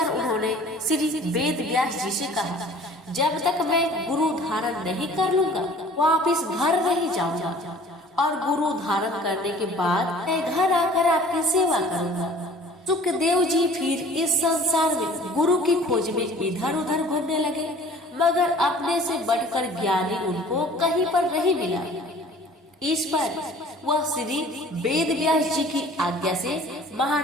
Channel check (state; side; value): normal; both; correlation 0.49